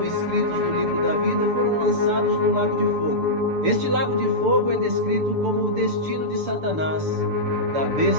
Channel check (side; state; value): left; late; 6.9 ms